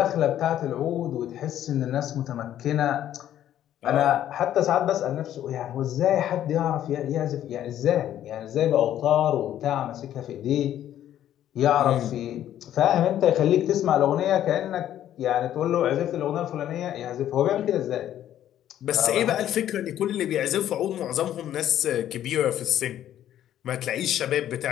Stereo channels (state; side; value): quieter; right; 11.5 dB